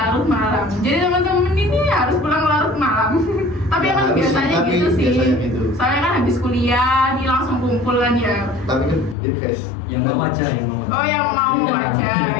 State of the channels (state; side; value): drops out; right; at 9.2 s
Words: malam. Jadi teman-teman ini harus pulang larut malam. Tapi Ya, emang harus, biasanya tapi gitu sih. biasanya gitu. Soalnya kan habis kuliah, dia langsung kumpul kan ya. Tapi kan ya guys, Yang mau aja, yang mau. Oh, yang mau aja